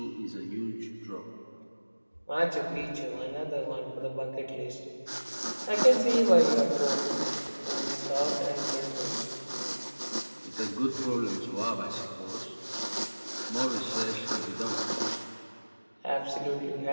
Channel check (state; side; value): inverted; both; correlation -1.00